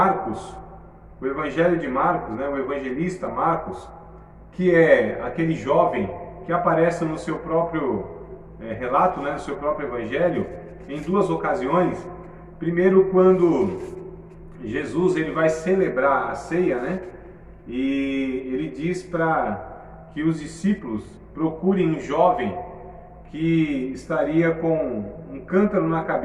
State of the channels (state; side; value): identical; both; correlation 1.00